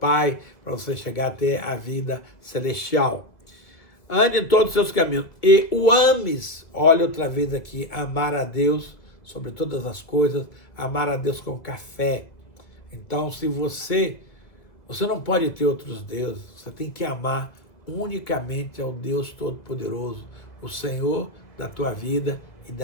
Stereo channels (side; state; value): right; late; 1.9 ms